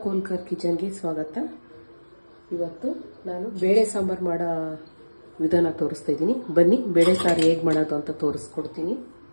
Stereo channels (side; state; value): both; inverted; correlation -1.00